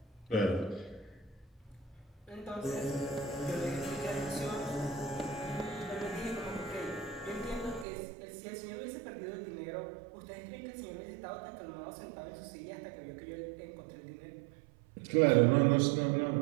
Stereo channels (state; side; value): drops out; left; at 7.9 s